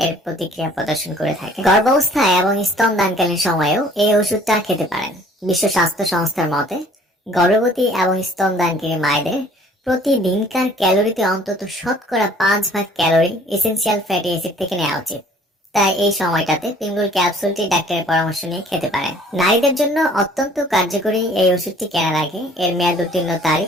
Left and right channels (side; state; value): both; normal; correlation 0.55